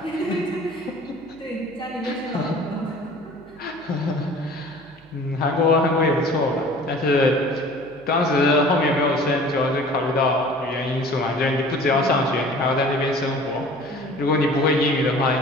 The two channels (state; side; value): noise; right; hum, 27 dB below the sound